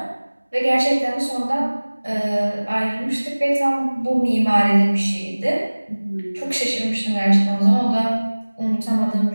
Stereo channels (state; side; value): inverted; both; correlation -1.00